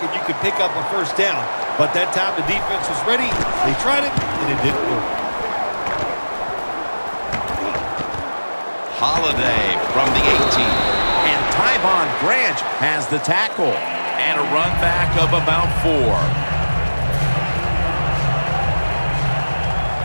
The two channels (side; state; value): both; inverted; correlation -1.00